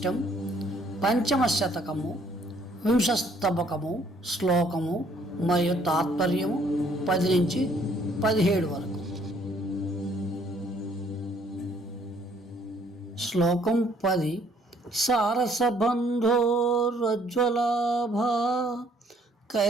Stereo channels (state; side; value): normal; both; correlation 0.63